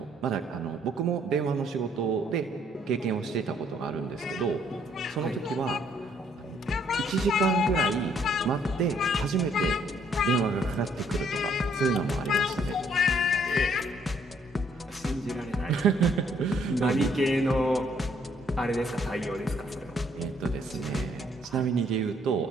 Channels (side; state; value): both; normal; correlation 0.66